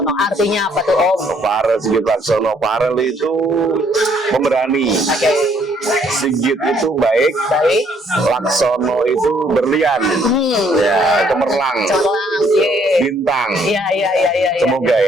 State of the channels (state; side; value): normal; both; correlation 0.66